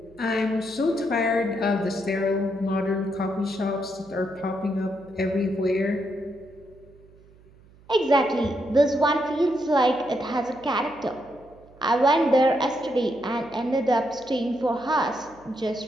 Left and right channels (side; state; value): right; noise; hum, 26 dB below the sound